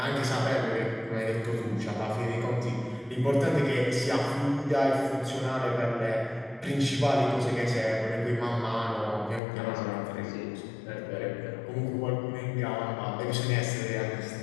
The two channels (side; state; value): right; drops out; at 9.4 s